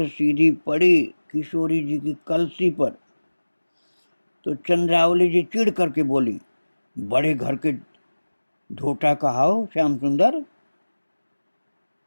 सीधी पड़ी किशोरी जी की कलसी पर, तो चंद्रावली जी चिढ़ करके बोली, बड़े घर के ढोटा कहाओ श्याम सुंदर,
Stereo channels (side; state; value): both; inverted; correlation -1.00